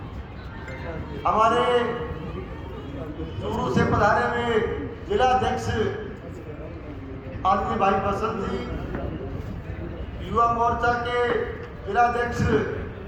हमारे चूरू से पधारे हुए जिला अध्यक्ष आदमी भाई बसंत जी, युवा मोर्चा के जिला अध्यक्ष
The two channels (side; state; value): both; identical; correlation 1.00